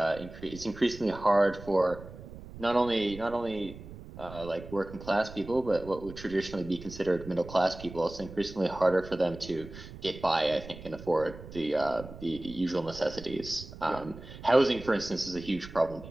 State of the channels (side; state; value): right; noise; rumble, 14 dB below the sound